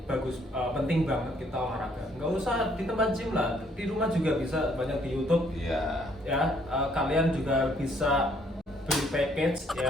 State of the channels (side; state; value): both; normal; correlation 0.66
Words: bagus, penting banget kita olahraga. Nggak usah di tempat gym lah, di rumah juga bisa, banyak di YouTube. Iya. Ya, kalian juga bisa beli package